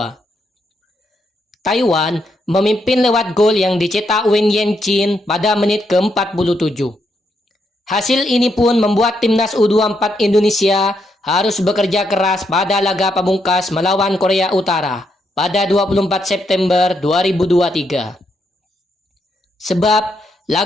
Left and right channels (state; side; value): normal; both; correlation 0.78